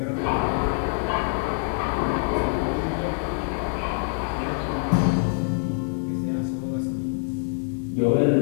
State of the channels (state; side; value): silent; right; digital silence